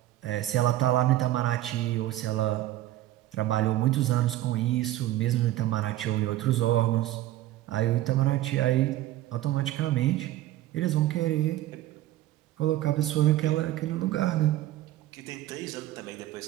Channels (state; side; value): quieter; left; 14.6 dB